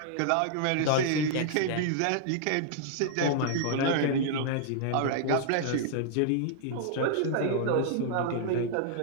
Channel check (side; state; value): both; different; correlation -0.01